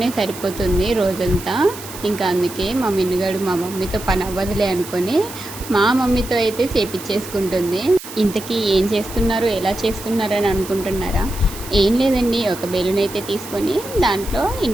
సరిపోతుంది రోజంతా. ఇంకా అందుకే మా మిన్నుగాడు మా మమ్మీతో పని అవ్వదులే అనుకొని మా మమ్మీతో అయితే చేపించేసుకుంటుంది. ఇంతకీ ఏం చేస్తున్నారు, ఎలా చేస్తున్నారు అని అనుకుంటున్నారా? ఏం లేదండి, ఒక బెలూన్ అయితే తీసుకొని దాంట్లో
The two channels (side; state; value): right; noise; hiss, 13 dB below the sound